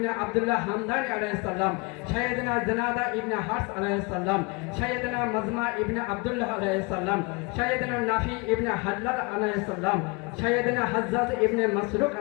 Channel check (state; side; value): quieter; right; 28.6 dB